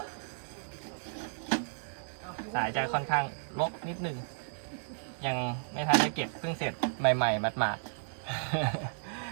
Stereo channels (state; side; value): silent; left; 55 dB below the other